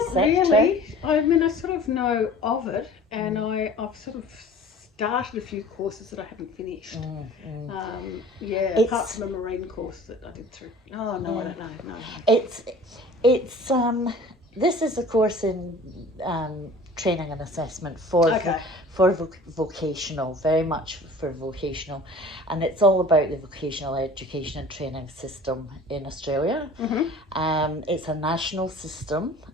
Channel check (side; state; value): both; normal; correlation 0.44